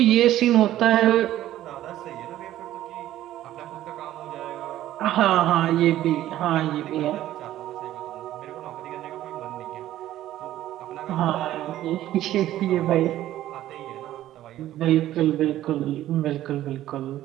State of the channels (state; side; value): quieter; left; 13.5 dB